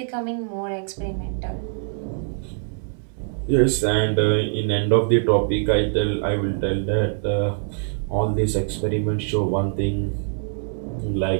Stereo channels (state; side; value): silent; left; digital silence